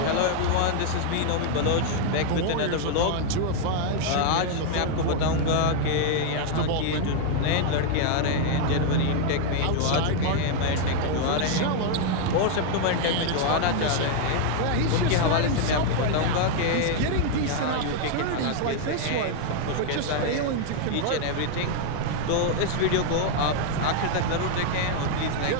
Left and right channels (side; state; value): both; different; correlation 0.00